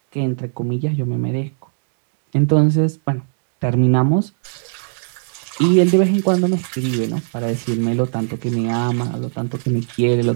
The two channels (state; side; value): silent; left; digital silence